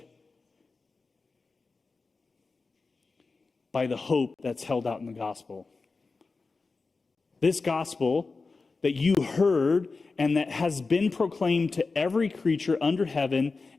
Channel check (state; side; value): quieter; right; 4.0 dB